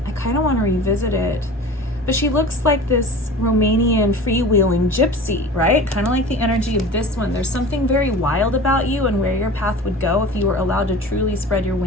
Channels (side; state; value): both; normal; correlation 0.37